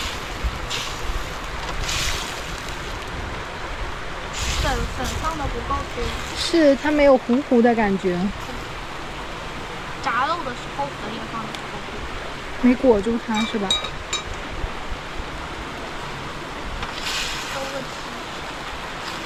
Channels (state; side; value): identical; both; correlation 1.00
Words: 粉放的不够多。是，它没有糊糊的感觉。炸肉的时候粉也放的不够多。没裹住它是吧？都问题。